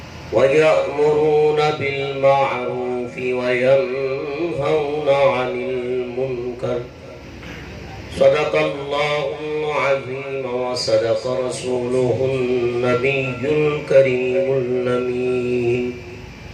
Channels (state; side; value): identical; both; correlation 1.00